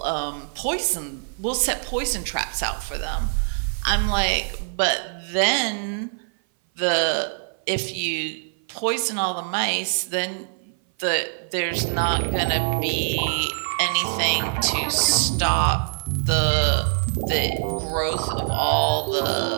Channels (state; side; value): silent; left; 58 dB below the other